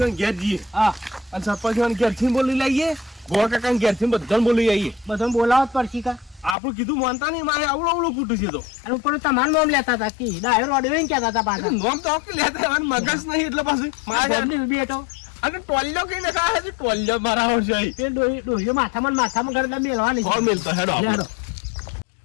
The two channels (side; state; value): right; drops out; at 6.6 s